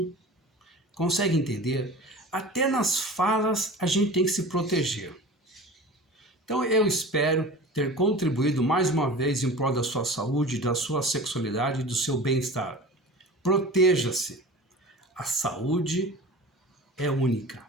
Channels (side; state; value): both; normal; correlation 0.37